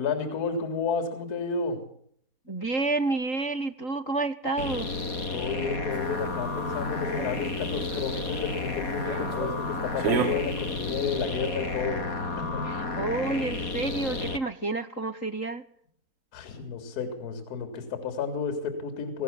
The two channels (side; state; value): right; late; 4.2 ms